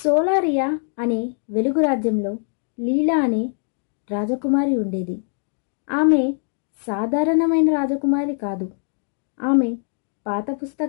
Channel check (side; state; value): right; silent; digital silence